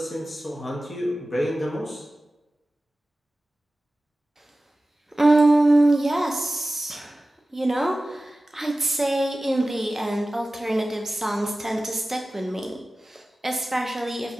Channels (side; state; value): both; normal; correlation 0.96